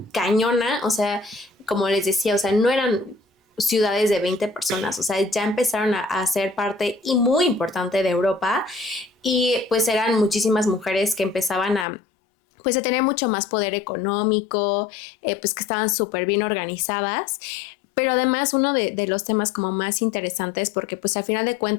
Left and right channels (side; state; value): right; drops out; at 11.9 s